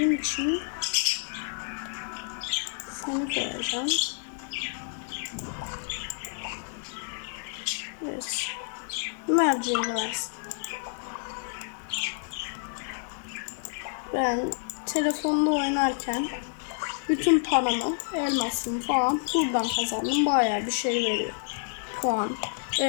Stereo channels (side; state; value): right; silent; 59 dB below the other